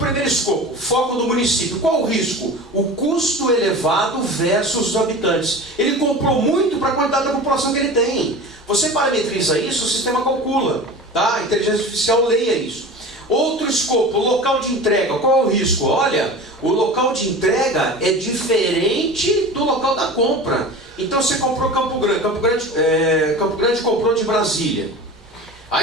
escopo, foco do município. Qual o risco? O custo elevado versus os habitantes. Ele comprou muito para a quantidade da população que ele tem. Você parametriza isso, o sistema calcula. Tá? A inteligência artificial leia isso. Outro escopo, local de entrega. Qual é o risco? Olha, o local de entrega é diferente do local da compra. Então você comprou Campo Grande. Campo Grande comprou de Brasília.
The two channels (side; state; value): both; normal; correlation 0.34